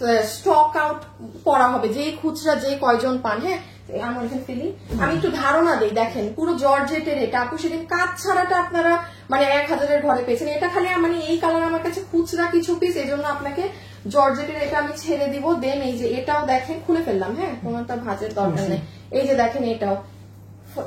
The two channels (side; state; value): both; identical; correlation 1.00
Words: স্টক আউট করা হবে, যে খুচরা যে কয়জন পান। হ্যাঁ, আমার এখানে ফেলি, আমি একটু ধারণা দিই। দেখেন পুরো জর্জেটের এটা আপু, সেদিন কাজ ছাড়াটা আপনারা মানে 1000-এর ঘরে পেয়েছেন। এটা খালি মানে এই কালার আমার কাছে খুচরা কিছু পিস, এই জন্য আপনাকে জর্জেটের এটা আমি ছেড়ে দিব। দেন এই যে এটাও দেখেন, খুলে ফেললাম। হ্যাঁ, কোনটা ভাজের দরকার নেই। এই যে দেখেন এটাও